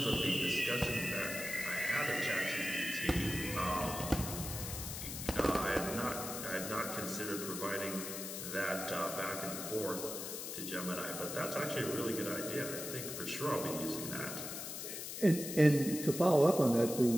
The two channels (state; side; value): noise; left; hiss, 6 dB below the sound